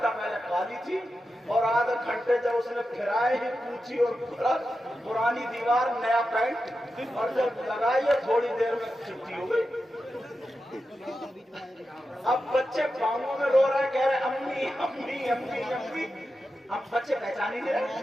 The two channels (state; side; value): normal; both; correlation 0.90